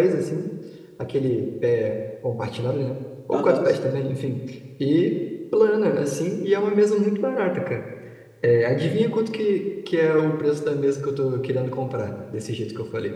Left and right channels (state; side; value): identical; both; correlation 1.00